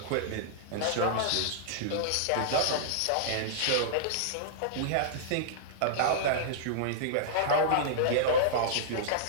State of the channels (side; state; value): both; different; correlation -0.02